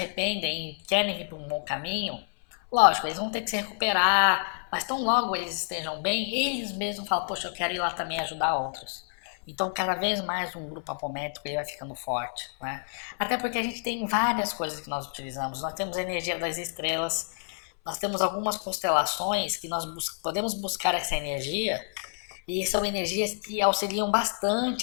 e querem ir para um bom caminho, lógico, eles vão ter que se recuperar, mas tão logo eles estejam bem, eles mesmos falam, poxa, eu quero ir lá também ajudar outros. Então, cada vez mais um grupo apométrico ele vai ficando forte, né? Até porque a gente tem várias coisas que nós utilizamos. Nós temos a energia das estrelas, nós temos algumas constelações que nós podemos buscar essa energia e são energias que auxiliam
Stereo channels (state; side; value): silent; right; 57 dB below the other